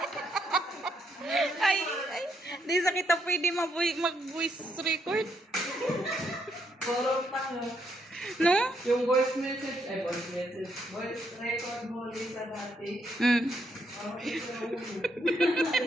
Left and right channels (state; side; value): normal; both; correlation 0.76